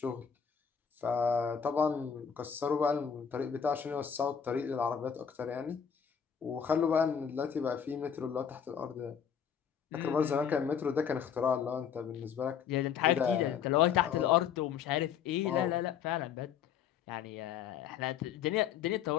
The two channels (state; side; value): quieter; right; 7.7 dB